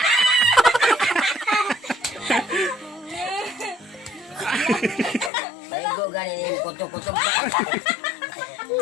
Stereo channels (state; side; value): drops out; right; at 5.3 s